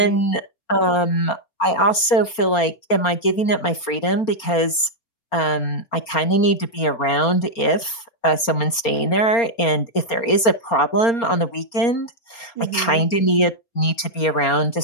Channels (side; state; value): right; late; 4.3 ms